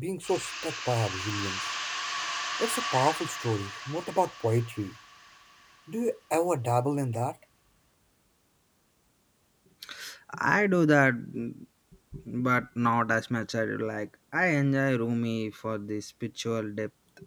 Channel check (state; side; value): identical; both; correlation 1.00